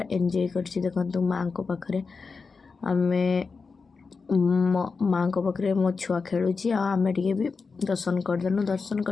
ଏନ୍ଜୟ କରିଛି। ଦେଖନ୍ତୁ ମାଆଙ୍କ ପାଖରେ ଆମେ ମାଆଙ୍କ ପାଖରେ ମୋ ଛୁଆ ଖେଳୁଛି ଆଉ ଆମେ ଟିକେ ବି ଦର୍ଶନ କରିଦେଲୁ। ଦର୍ଶନ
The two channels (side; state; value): right; quieter; 4.7 dB